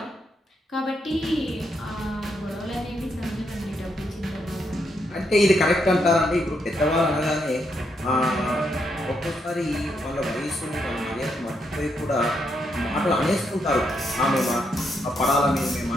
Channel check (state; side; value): normal; both; correlation 0.79